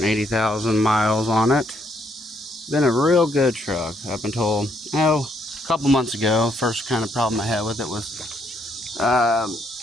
miles on it. Been a real good truck up until a couple months ago. First kind of problem I had with it was I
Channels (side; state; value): both; normal; correlation 0.72